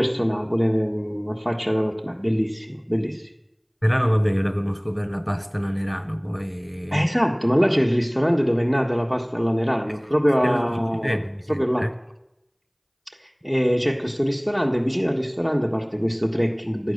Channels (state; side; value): identical; both; correlation 1.00